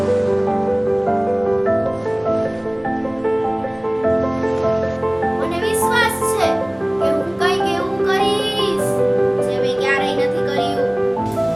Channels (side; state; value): right; noise; rumble, 29 dB below the sound